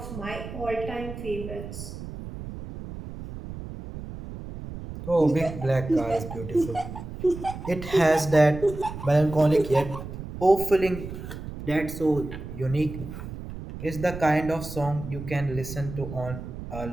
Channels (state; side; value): noise; right; rumble, 10 dB below the sound